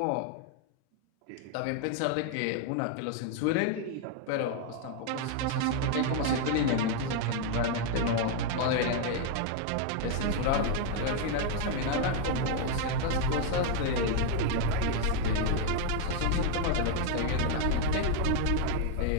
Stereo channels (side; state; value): both; different; correlation 0.00